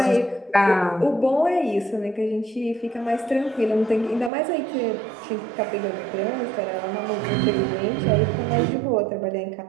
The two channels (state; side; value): drops out; left; at 4.3 s